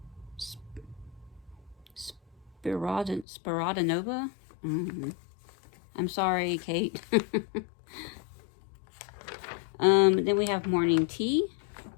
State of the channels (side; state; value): right; drops out; at 3.2 s